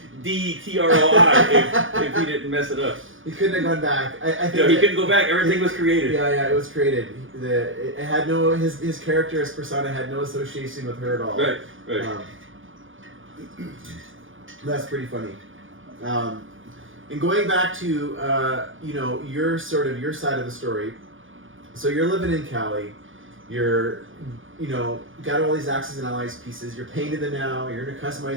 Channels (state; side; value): late; left; 0.58 ms